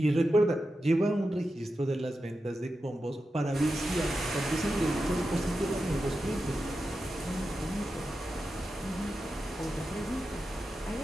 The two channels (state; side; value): normal; both; correlation 0.90